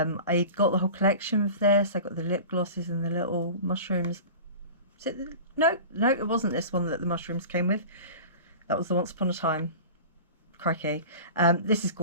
got the whole collection of this. I got the lip glosses and the little mushrooms. Is it no, it wasn't this one that the mushrooms came with. That was the Once Upon a Time. Crikey. This is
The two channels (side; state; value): both; inverted; correlation -0.36